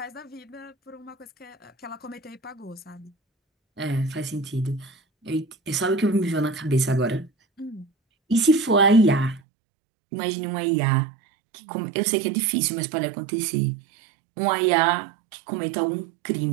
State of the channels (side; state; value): left; drops out; at 9.4 s